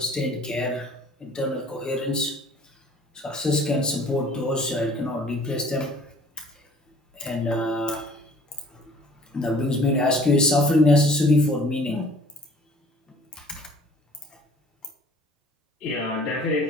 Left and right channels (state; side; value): normal; both; correlation 0.52